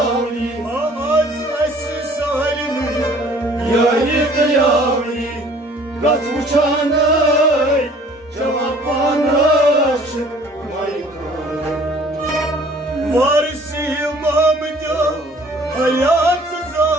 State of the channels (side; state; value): both; normal; correlation 0.54